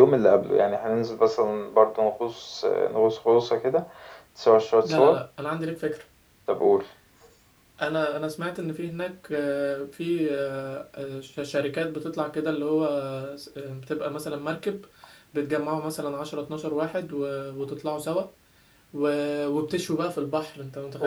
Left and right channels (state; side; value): identical; both; correlation 1.00